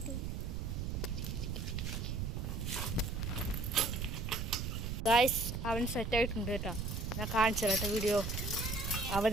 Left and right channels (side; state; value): right; noise; rumble, 2 dB below the sound